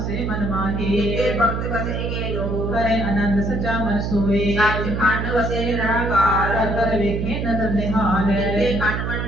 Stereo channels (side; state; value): right; noise; hum, 2 dB below the sound